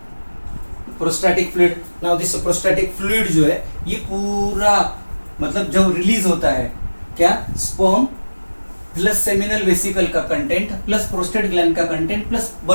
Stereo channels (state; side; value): inverted; both; correlation -1.00